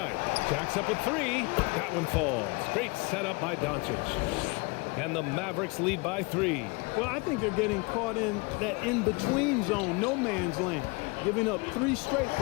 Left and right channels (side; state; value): right; quieter; 28.2 dB